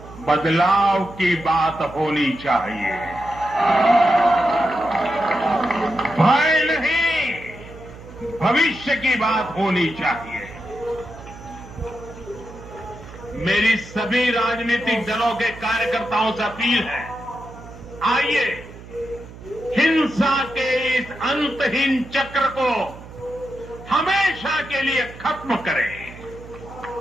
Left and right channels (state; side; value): noise; right; hum, 17 dB below the sound